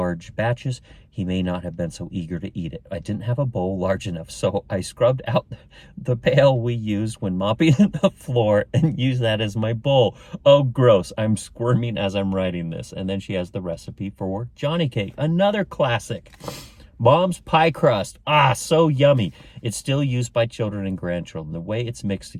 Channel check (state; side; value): identical; both; correlation 1.00